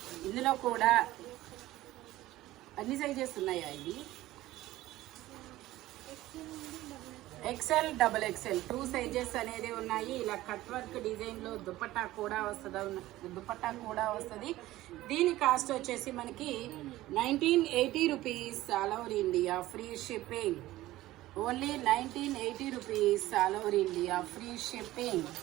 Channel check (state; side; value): quieter; left; 16.4 dB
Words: ఇందులో కూడా అన్ని సైజెస్ ఉన్నాయా? ఇది ఎక్సెల్, డబల్ ఎక్సెల్ 2 సైజెస్ అనేది ఉన్నాయి. ఇలా కట్ వర్క్ డిజైన్లో దుపట్టా కూడా వస్తుంది. దీని కాస్ట్ వచ్చేసి మనకి 1980 rupees all over India, free shipping. Only 1980 rupees all over India, free shipping.